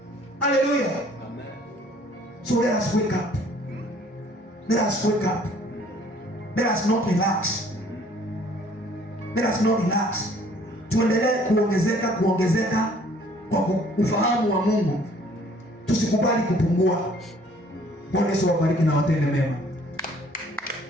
Haleluya. So let us wake up. Let us wake up. Let us not relax. Let us not relax. Tuendelee kuongezeka kwa ufahamu wa Mungu. Tusikubali kupungua. Bwana Yesu awabariki na watende mema.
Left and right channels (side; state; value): both; normal; correlation 0.57